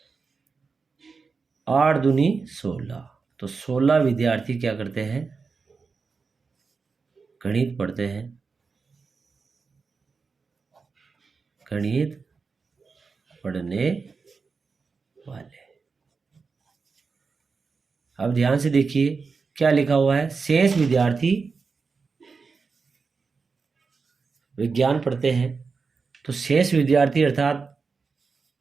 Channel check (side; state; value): left; quieter; 4.8 dB